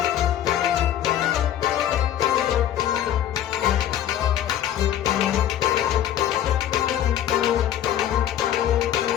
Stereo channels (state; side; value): quieter; right; 11.3 dB